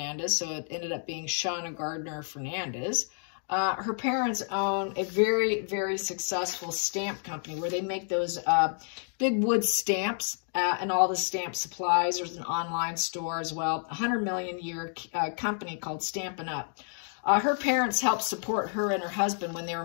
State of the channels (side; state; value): right; silent; 58 dB below the other